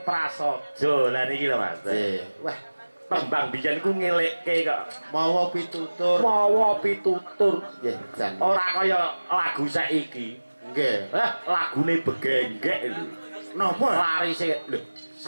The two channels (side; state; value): both; inverted; correlation -1.00